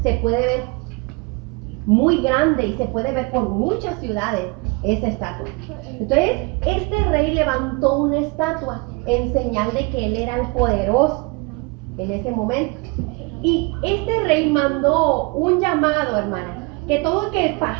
Se puede ver muy grande y se puede ver por muchas ciudades esa estatua. Entonces, este rey levantó una estatua en señal de que él era el poderoso en ese momento. Y este rey mandó un llamado, hermana, que todo el que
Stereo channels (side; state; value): left; quieter; 28.3 dB